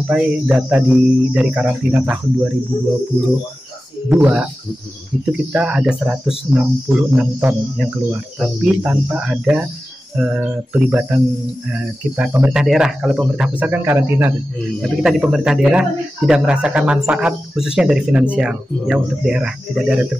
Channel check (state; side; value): normal; both; correlation 0.94